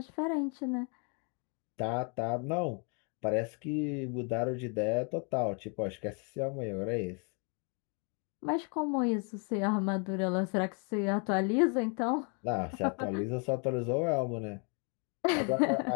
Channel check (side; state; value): right; quieter; 37.0 dB